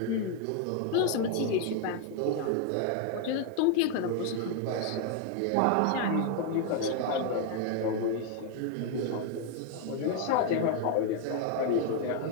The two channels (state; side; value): different; both; correlation 0.00